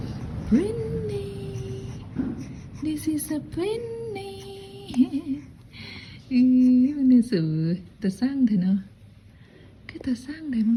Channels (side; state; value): both; identical; correlation 1.00